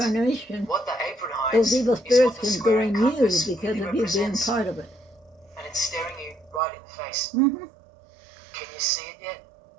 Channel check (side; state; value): left; drops out; at 6.6 s